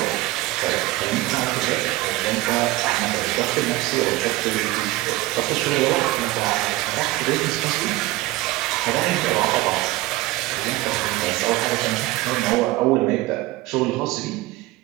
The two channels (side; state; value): left; quieter; 18.4 dB